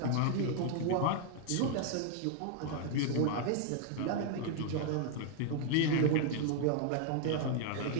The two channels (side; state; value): both; different; correlation 0.00